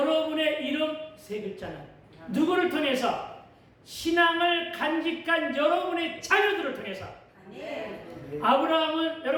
이름 세 글자는 누구를 통해서? 신앙을 간직한 여러분의 자녀들을 통해서. 아브라함은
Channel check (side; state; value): both; identical; correlation 1.00